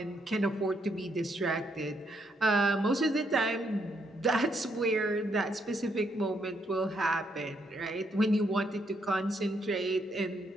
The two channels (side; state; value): both; normal; correlation 0.75